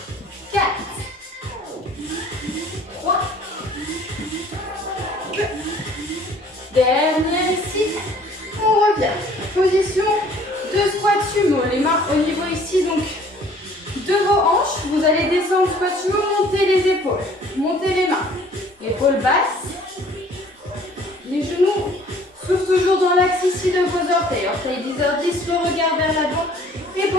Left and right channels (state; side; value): normal; both; correlation 0.54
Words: 4. 3. 2. Dernière ici. On revient. Position de squat sumo. Les mains au niveau ici, donc, de vos hanches. Vous allez descendre squat sumo, monter les épaules. Montez les mains. Épaules basses. Les genoux. Souffle toujours dans l'axe ici de vos orteils. Orteils 10h10, le regard vers l'avant. Et